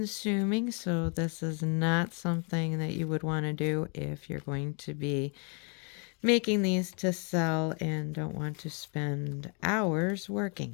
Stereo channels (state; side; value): quieter; right; 37.3 dB